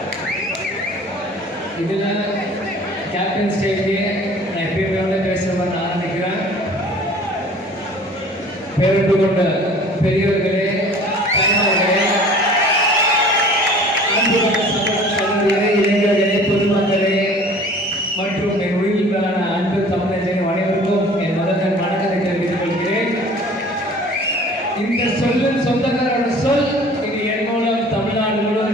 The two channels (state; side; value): normal; both; correlation 0.47